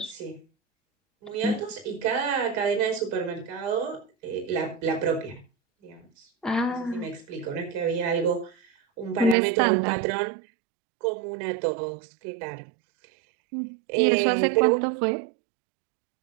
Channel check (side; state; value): left; drops out; at 9.3 s